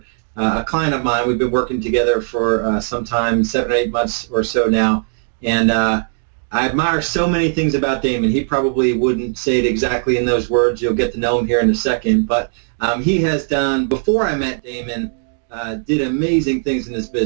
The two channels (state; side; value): silent; left; 67 dB below the other